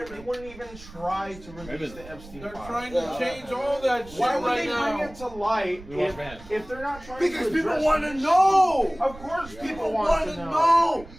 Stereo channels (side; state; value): right; noise; rumble, 18 dB below the sound